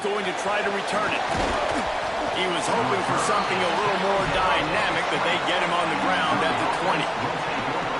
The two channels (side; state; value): both; identical; correlation 1.00